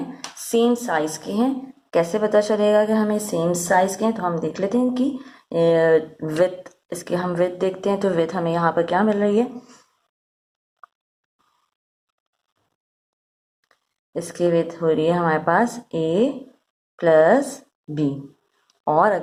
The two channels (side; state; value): both; identical; correlation 1.00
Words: सेम साइज़ के हैं। कैसे पता चलेगा कि हमें सेम साइज़ के हैं, तो हम देख लेते हैं कि विथ, इसके हम विथ देखते हैं। तो विथ हमें यहाँ पर क्या मिल रही है, इसकी विथ हो रही है हमारे पास ए प्लस बी। और